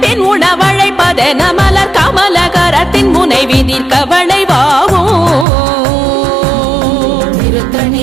உணவழைப்பதென மலர் கமல கரத்தின் முனை விதிர் கவளைவாகும்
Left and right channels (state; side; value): drops out; left; at 5.5 s